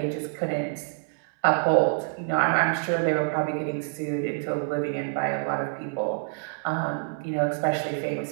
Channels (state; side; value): silent; left; 60 dB below the other